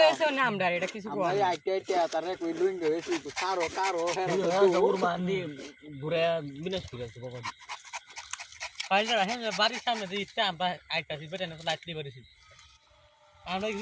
হইছে না আমরা এটা কিছু কই ভাই আইতে আইতে তারে কই লুইং গেছে তো কারো কারো হেরা দৌড় মান্ডি ঘুরে বিনাশ করে আছে বাবা পাইলা হেন বাড়ির সামনে যে ইচ্ছা আমরা আইতাছি বেটা না লাইট দিয়ে বাড়িছি আমরা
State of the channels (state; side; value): identical; both; correlation 1.00